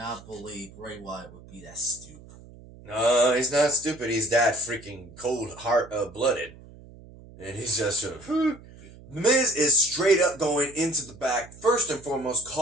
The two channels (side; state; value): right; noise; hum, 20 dB below the sound